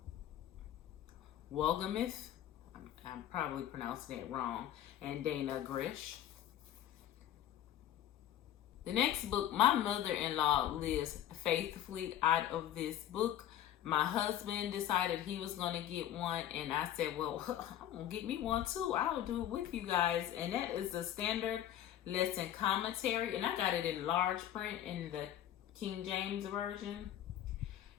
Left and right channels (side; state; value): right; quieter; 11.7 dB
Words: Wolgamuth. I'm probably pronouncing it wrong. And Dana Grish. The next book, my mother-in-law lives faithfully out of this book. My husband decided he was going to get one, and I said, well, I'm going to get me one too. I'll do it with you guys. And that is the Standard Lesson Commentary, and I got it in large print in the King James Version.